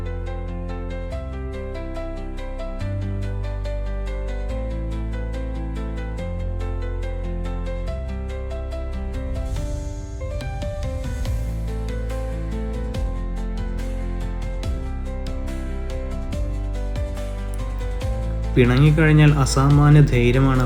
പിണങ്ങിക്കഴിഞ്ഞാൽ അസാമാന്യ ധൈര്യമാണ്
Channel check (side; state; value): both; identical; correlation 1.00